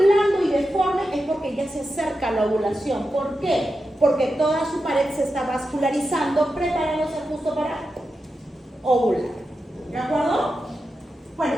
y deforme es porque ya se acerca a la ovulación. ¿Por qué? Porque toda su pared se está vascularizando, preparándose justo para ovular. ¿De acuerdo? Bueno,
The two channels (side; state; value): both; normal; correlation 0.89